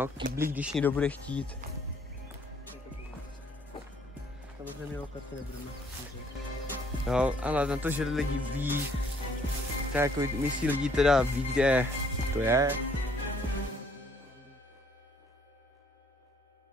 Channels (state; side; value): normal; both; correlation 0.64